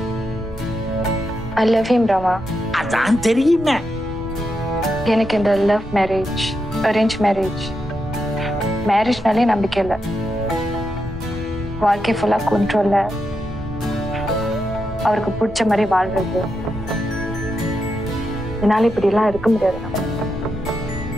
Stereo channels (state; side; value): normal; both; correlation 0.84